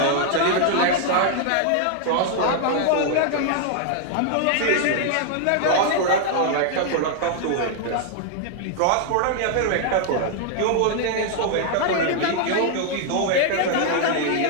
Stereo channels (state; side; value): different; both; correlation 0.00